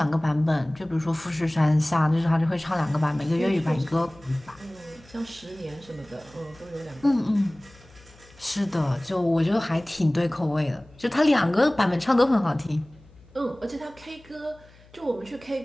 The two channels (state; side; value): noise; left; hum, 26 dB below the sound